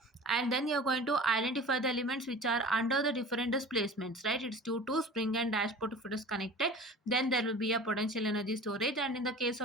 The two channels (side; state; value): both; normal; correlation 0.39